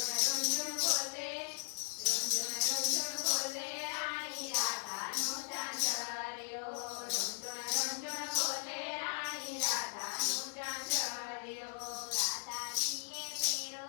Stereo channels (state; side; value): silent; right; 53 dB below the other